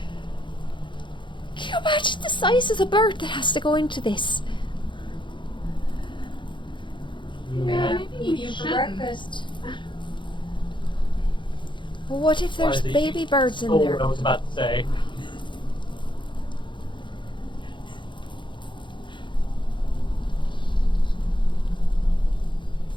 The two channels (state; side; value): late; right; 0.23 ms